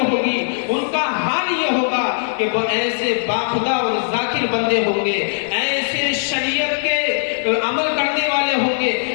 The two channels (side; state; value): right; silent; digital silence